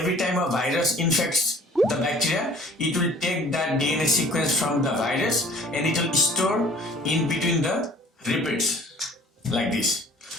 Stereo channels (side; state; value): both; normal; correlation 0.51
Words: time a virus infects the bacteria, it will take that DNA sequence from the virus and it will store in between the repeats like this.